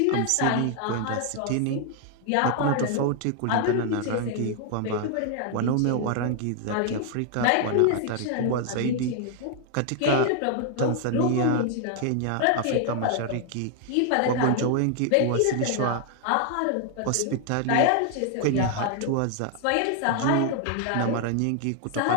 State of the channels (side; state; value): both; different; correlation 0.00